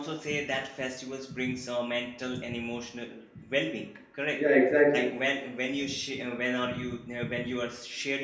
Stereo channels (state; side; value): identical; both; correlation 1.00